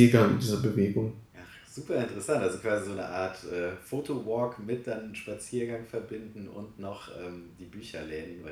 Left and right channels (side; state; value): both; identical; correlation 1.00